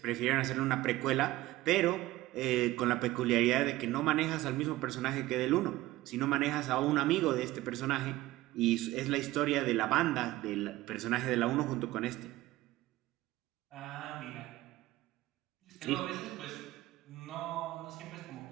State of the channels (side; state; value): left; quieter; 17.2 dB